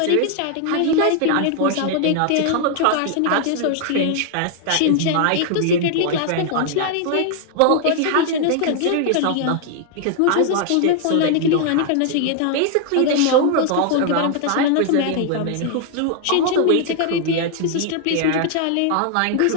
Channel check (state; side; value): different; both; correlation 0.00